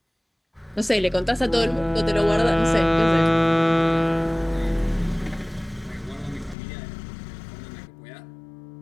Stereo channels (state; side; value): drops out; right; at 6.6 s